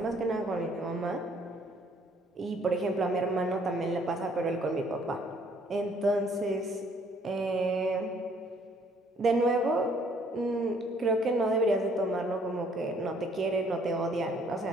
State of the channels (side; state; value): both; normal; correlation 0.63